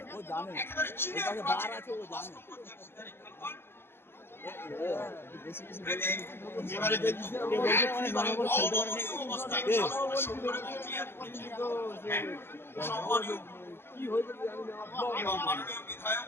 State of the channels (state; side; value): late; right; 0.11 ms